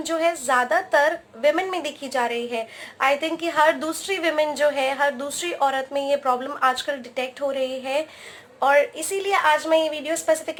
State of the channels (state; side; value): identical; both; correlation 1.00